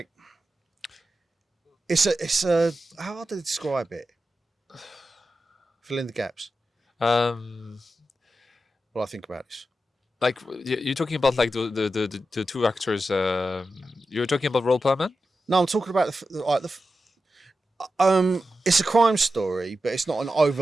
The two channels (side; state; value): both; normal; correlation 0.90